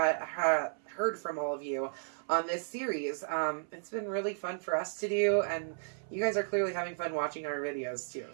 from all of you on this series. It's been really fun for us to do, and you guys are clearly having fun watching our videos too.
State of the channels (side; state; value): left; silent; 55 dB below the other